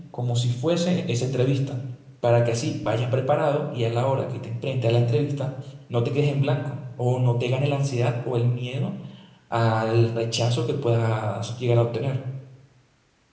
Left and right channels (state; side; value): identical; both; correlation 1.00